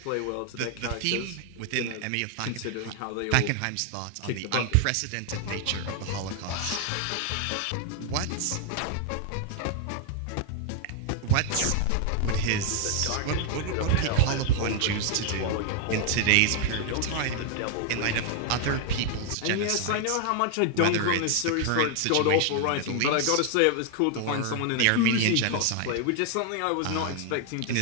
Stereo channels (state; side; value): different; both; correlation 0.00